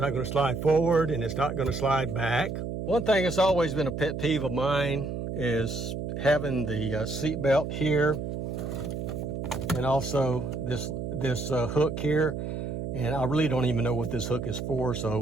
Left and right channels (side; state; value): right; noise; hum, 4 dB below the sound